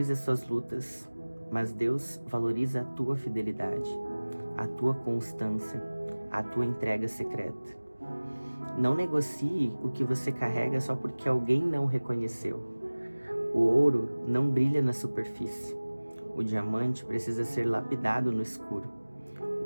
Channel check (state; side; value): inverted; both; correlation -1.00